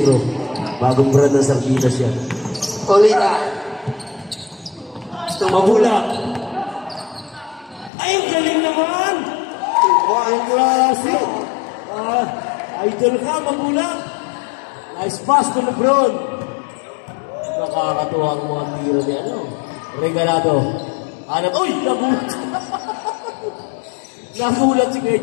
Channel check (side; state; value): right; drops out; at 7.9 s